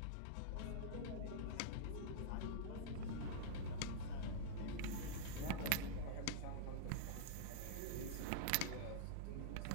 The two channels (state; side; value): different; both; correlation -0.02